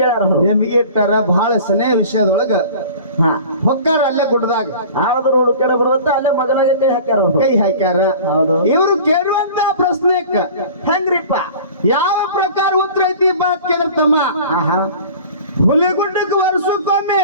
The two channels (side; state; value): both; inverted; correlation -0.41